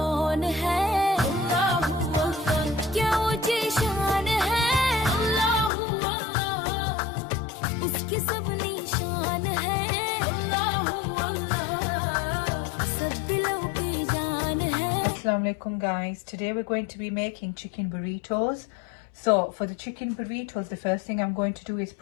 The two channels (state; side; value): drops out; right; at 5.7 s